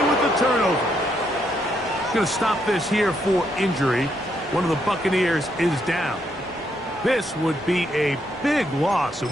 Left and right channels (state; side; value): normal; both; correlation 0.76